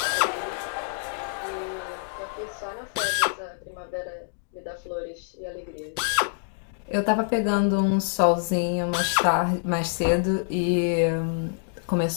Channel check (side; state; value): right; silent; digital silence